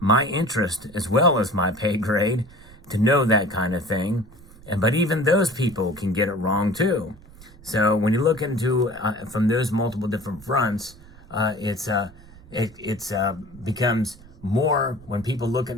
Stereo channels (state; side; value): noise; right; rumble, 22 dB below the sound